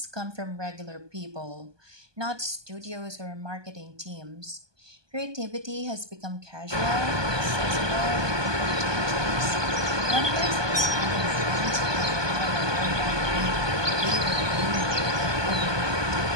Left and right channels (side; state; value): left; late; 1.2 ms